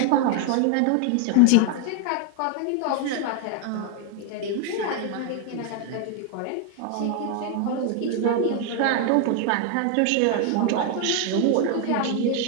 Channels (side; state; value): both; different; correlation 0.01